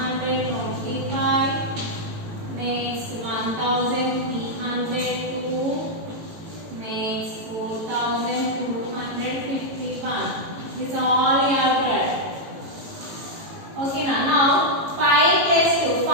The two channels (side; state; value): left; late; 18 ms